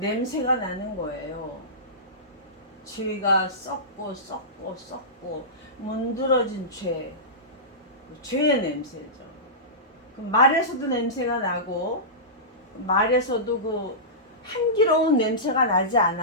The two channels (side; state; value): both; normal; correlation -0.18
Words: 나는 거예요. 죄가 썩고 문드러진 죄의 냄새죠. 그 말에서도 냄새가 나고, 말에서도 그 향기로운 냄새가 나지